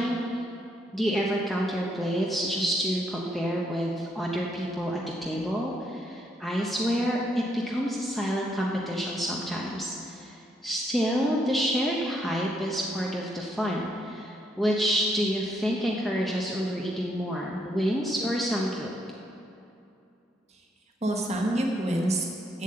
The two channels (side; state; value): both; normal; correlation 0.74